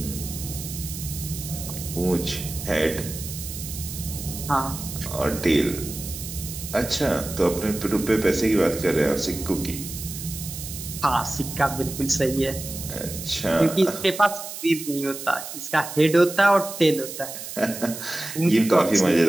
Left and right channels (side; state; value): right; noise; hiss, 9 dB below the sound